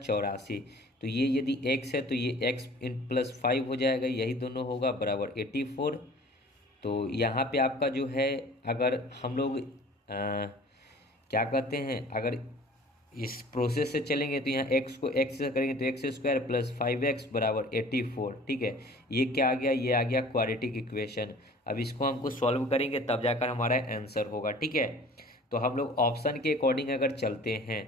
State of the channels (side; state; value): both; normal; correlation 0.47